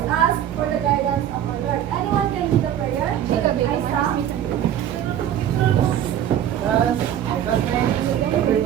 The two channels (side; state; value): left; quieter; 10.5 dB